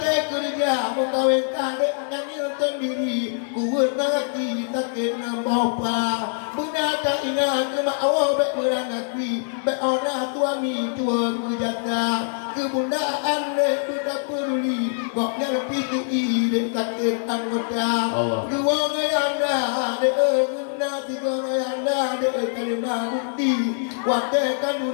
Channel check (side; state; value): right; silent; digital silence